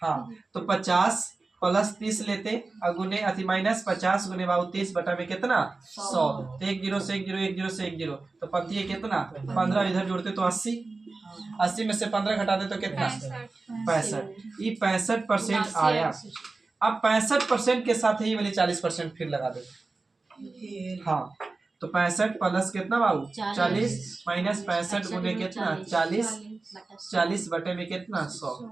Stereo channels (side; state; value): left; quieter; 3.6 dB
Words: हाँ तो 50 प्लस 30 लेते और गुने अति माइनस 50 गुने बाबू 30 बटा में कितना 100, तो 1 0 से 1 0 1 0 से 1 0, तो पंक्ति है कितना 15, इधर जोड़ते तो 80 में से 15 घटा दे तो कितना 65, ये 65% आया। अब 65% के साथ ही वाली 40% फिर लगा दे, हाँ तो 65 प्लस कितना बाबू 40 माइनस 65 गुने कितना 40 बटे में कितना 100,